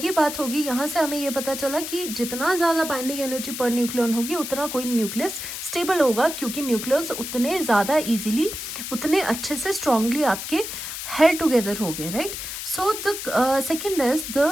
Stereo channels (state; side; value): noise; left; hiss, 7 dB below the sound